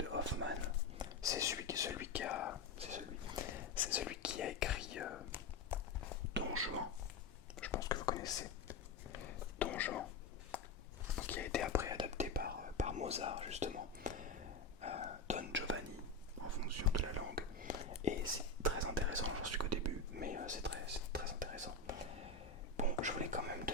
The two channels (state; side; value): quieter; right; 3.8 dB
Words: Hoffman, c'est celui qui a écrit Don Juan. Je pense que vous connaissez Don Juan, qui a été après adapté par Mozart justement, Don Giovanni en fonction de la langue. Et c'est très intéressant, j'en suis qu'au début, mais c'est très intéressant. Bon, je voulais quand même